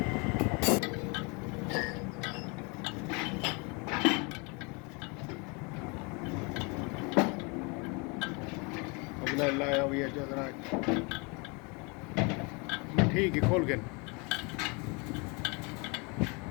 मोबाइल लाया हुआ है जरा ठीक है खोल के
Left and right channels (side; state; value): right; quieter; 30.5 dB